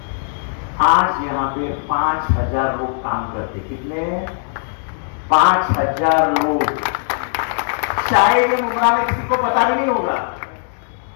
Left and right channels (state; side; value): silent; right; 67 dB below the other